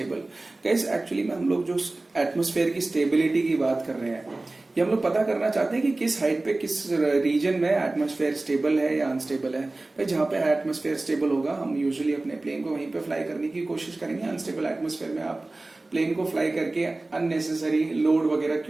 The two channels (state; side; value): quieter; left; 3.0 dB